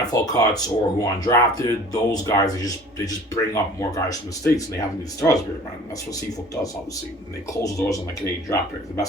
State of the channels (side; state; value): both; normal; correlation 0.47